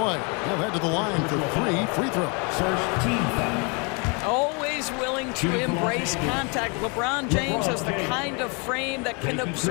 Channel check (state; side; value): quieter; right; 33.0 dB